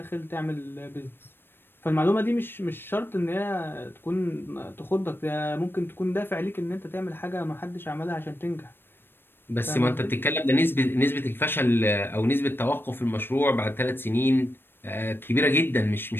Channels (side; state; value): right; late; 0.10 ms